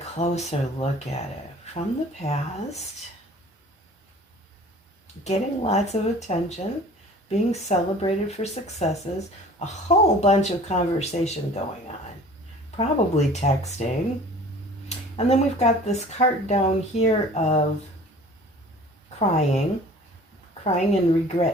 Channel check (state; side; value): normal; both; correlation 0.46